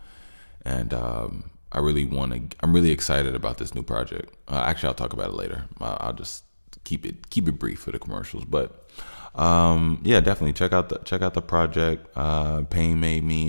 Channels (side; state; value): both; inverted; correlation -1.00